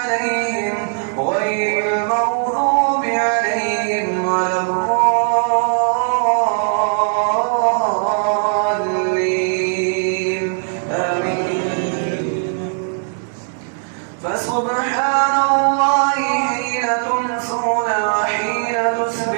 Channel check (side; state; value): left; silent; 64 dB below the other